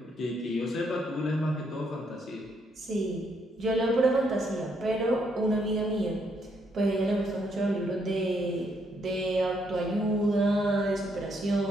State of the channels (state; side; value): normal; both; correlation 0.74